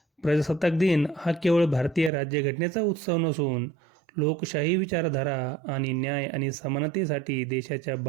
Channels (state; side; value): drops out; left; at 2.1 s